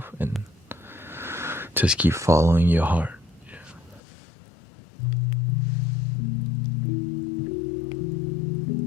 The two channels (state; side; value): drops out; right; at 4.0 s